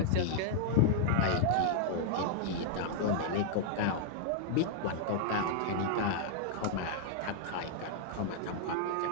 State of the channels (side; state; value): both; different; correlation -0.01